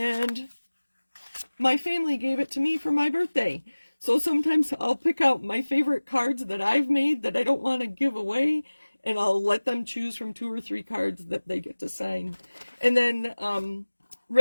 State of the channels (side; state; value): both; inverted; correlation -1.00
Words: my family gave it to me for my birthday. So sometimes I'll pick out my favorite cards that I've made that I don't want to give away, and I'll let them choose from 2 or 3 cards that they get to sign. And then